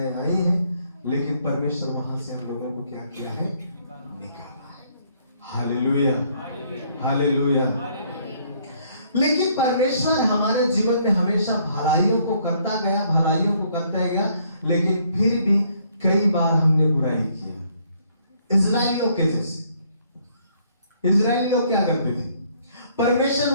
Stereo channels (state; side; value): inverted; both; correlation -0.66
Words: आई हैं, लेकिन परमेश्वर वहां से हम लोगों को क्या किया है? निकाला है। Hallelujah, hallelujah. लेकिन परमेश्वर हमारे जीवन में हमेशा भलाइयों को करता गया, भलाइयों को करता गया, लेकिन फिर भी कई बार हमने बुराई किया। इजरायलियों के जैसे। इजरायली लोग क्या करते थे? परमेश्वर